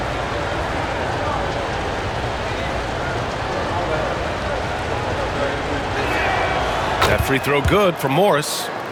That free throw good for Morris.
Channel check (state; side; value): identical; both; correlation 1.00